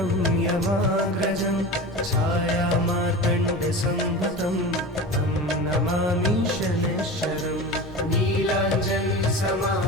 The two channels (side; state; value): both; normal; correlation 0.30